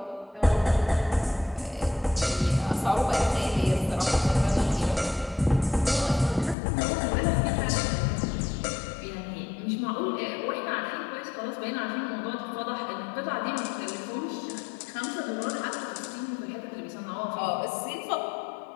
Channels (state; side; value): drops out; right; at 6.6 s